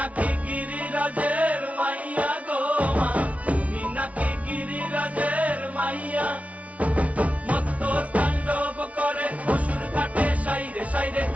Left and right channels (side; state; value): left; late; 0.066 ms